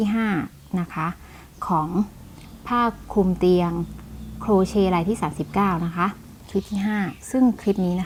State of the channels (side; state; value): both; identical; correlation 1.00